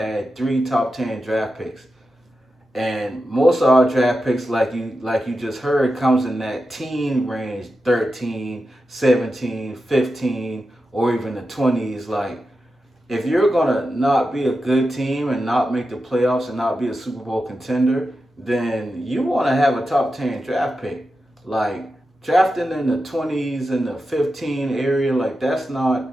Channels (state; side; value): normal; both; correlation 0.90